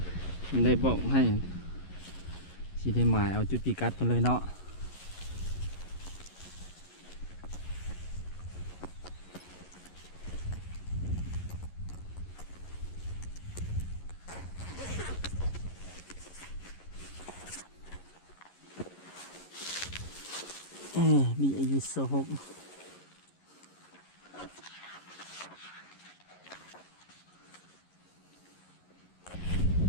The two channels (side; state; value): right; late; 11 ms